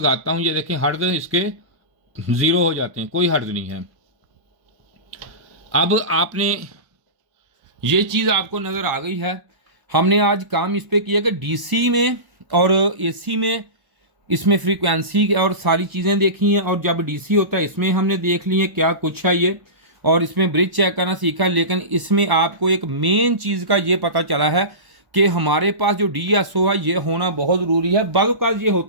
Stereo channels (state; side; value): late; left; 1.0 ms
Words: हूँ, ये देखें हर्ट्ज इसके 0 हो जाते हैं, कोई हर्ट्ज नहीं है। अब आपने ये चीज़ आपको नज़र आ गई है। हमने आज काम इस पे किया कि डीसी में और एसी में इसमें फ्रीक्वेंसी और सारी चीज़ें देखी हैं, और जब डीसी होता है इसमें हमने देख ली है क्या कुछ है ये, और इसमें ब्रिज चेक करना सीखा। लेकिन इसमें आपको एक मेन चीज़ का ये पता चला है कि हमारे पास जो डीएसओ है ये होना बहुत ज़रूरी है। बाज़ ये